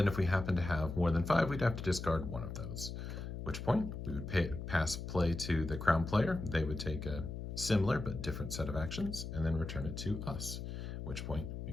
if we happen to have more than 5, we'd have to discard 1 of those, at which point we would pass play to the crown player. They would take a similar but different set of actions and then return it to us, at which point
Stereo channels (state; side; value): noise; left; hum, 7 dB below the sound